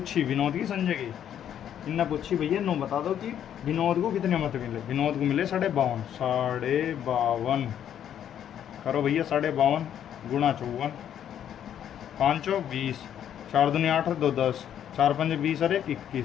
विनोद की, संजय की? इनने पूछी भैया 9 बता दो कि विनोद को कितने मत मिले। विनोद को मिले 52, 52 करो भैया 52 गुणा 54, 5 चौक 20, 4 दूनी 8 और 2 10, 4 पंजे 20 और 1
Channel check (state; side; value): quieter; right; 9.9 dB